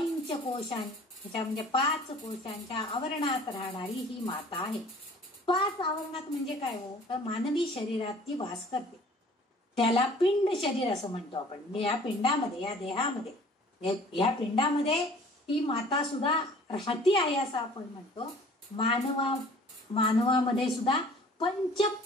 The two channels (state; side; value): normal; both; correlation 0.50